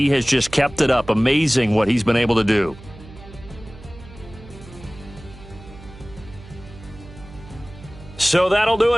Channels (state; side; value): noise; right; hum, 18 dB below the sound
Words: has just kept it up. Amazing what he's been able to do. So that'll do